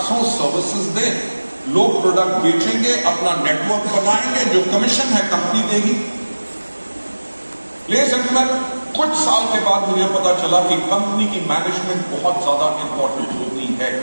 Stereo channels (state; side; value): inverted; both; correlation -1.00